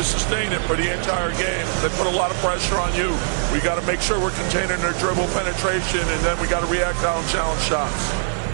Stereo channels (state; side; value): silent; left; 65 dB below the other